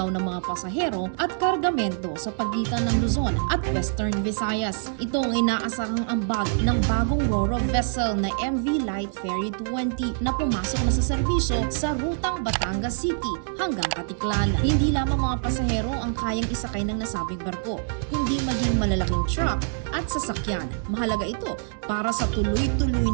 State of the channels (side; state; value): left; silent; digital silence